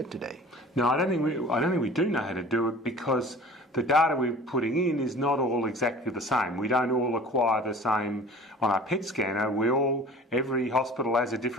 today. No, I don't think we do know how to do it, because the data we're putting in is not all exactly the same. We don't all acquire the same on our PET scanner. Every hospital has a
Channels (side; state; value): both; normal; correlation 0.43